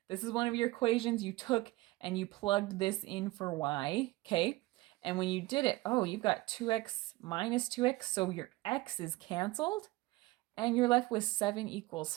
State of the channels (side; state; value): left; quieter; 20.2 dB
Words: this is one of your equations you took and you plugged this in for y, okay? And when you did it, oh, you've got 2x minus 2x, so your x is canceled, and you're left with 7 equals